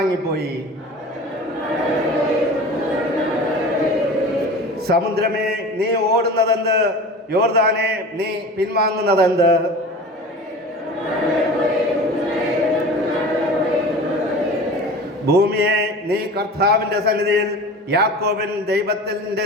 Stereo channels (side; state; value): both; normal; correlation 0.36